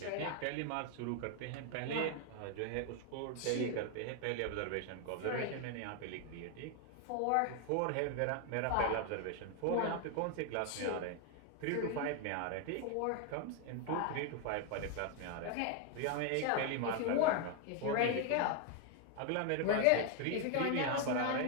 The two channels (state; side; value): different; both; correlation 0.01